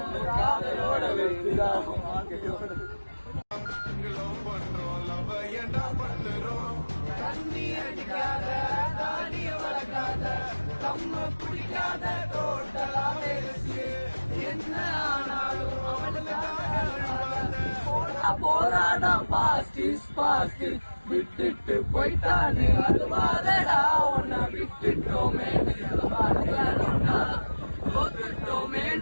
காதலோட வெற்றிதான் தண்ணி அடிக்காத தாடிய வளர்க்காத கம்ம பிடிக்காத டோட்டலா பேசு என்ன ஆனாலும் போராடம் பாஸ்ட் இஸ் பாஸ்ட் விட்டுட்டு போயிட்டானு அழுவாதடா உன்னை விட்டுட்டோமேனு அழுவாதடா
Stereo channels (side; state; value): both; inverted; correlation -1.00